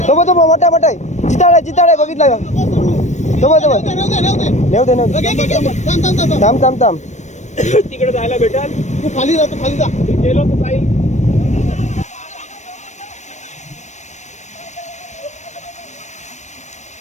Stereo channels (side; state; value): right; late; 0.34 ms